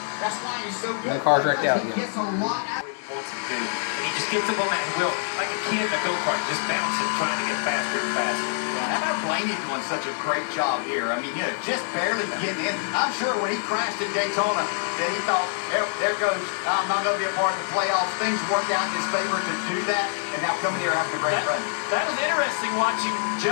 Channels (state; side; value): silent; right; digital silence